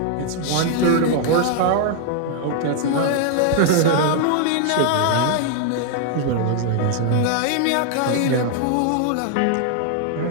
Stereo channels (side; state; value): both; different; correlation 0.00